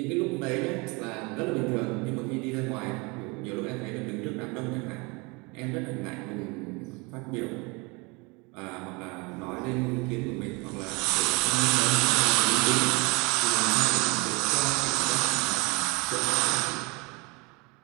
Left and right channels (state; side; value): quieter; left; 27.6 dB